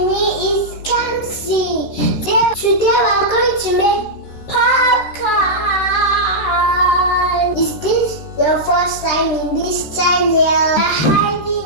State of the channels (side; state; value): right; late; 13 ms